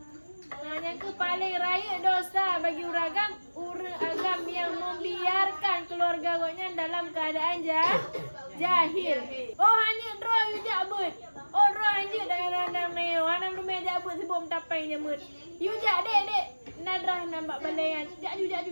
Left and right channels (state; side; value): inverted; both; correlation -1.00